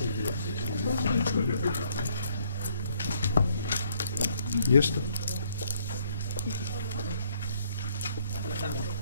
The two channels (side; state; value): both; inverted; correlation -0.67